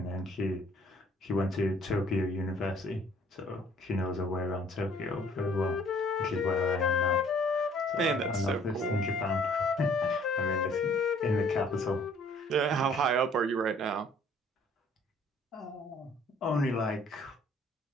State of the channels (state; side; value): normal; both; correlation 0.58